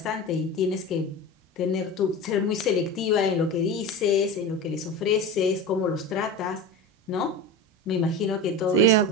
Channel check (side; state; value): both; normal; correlation 0.28